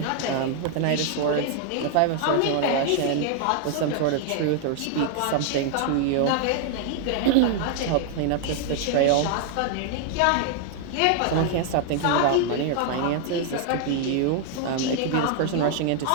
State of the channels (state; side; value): different; both; correlation 0.00